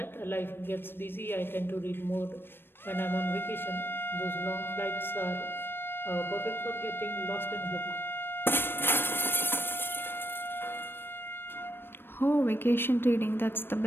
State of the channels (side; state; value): right; late; 0.10 ms